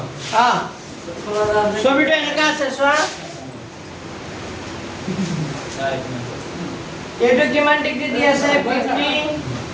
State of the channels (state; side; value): identical; both; correlation 1.00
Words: ছবিটা এনেকা আছে চোৱা এইটো কিমান ডিগ্ৰী দি আছে 50